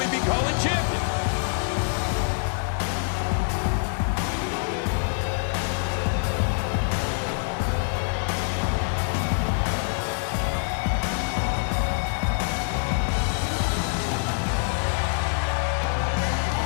be calling champion?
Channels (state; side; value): silent; right; 61 dB below the other